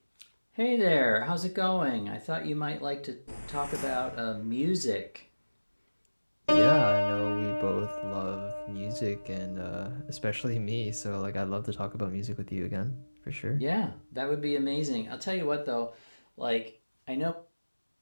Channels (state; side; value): inverted; both; correlation -1.00